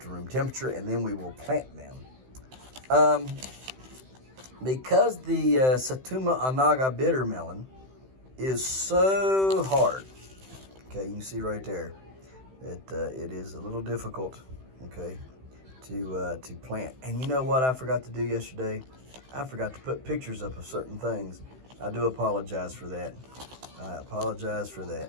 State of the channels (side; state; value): left; late; 16 ms